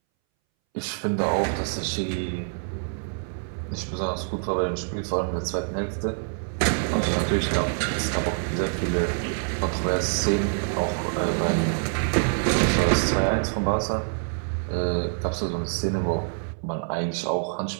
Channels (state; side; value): silent; left; 61 dB below the other